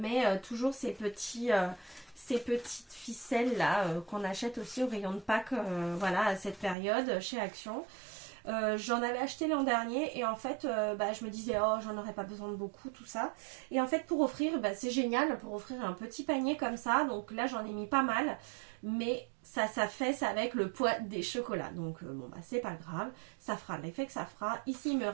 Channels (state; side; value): drops out; left; at 6.8 s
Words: toujours ces petites ficelles là qu'on achète aussi au rayon de Pâques, voilà, à cette période chez Action. J'en avais acheté l'an dernier et en fait je me disais oh j'en aurais pas besoin de beaucoup tout ça, et en fait pour offrir c'est génial pour offrir un petit panier comme ça. Donc là j'en ai mis pas mal, mais ça fait avec le poids des chocolats, donc bon c'est pas grave, ça fera l'effet que ça fera. Ici il me